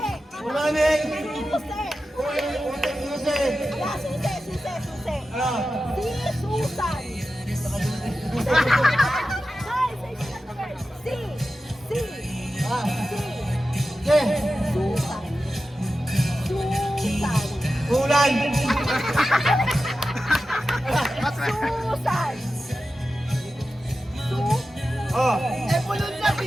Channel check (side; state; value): both; normal; correlation 0.93